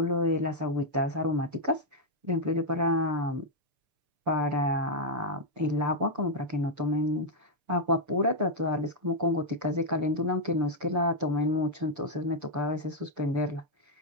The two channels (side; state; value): left; late; 6.8 ms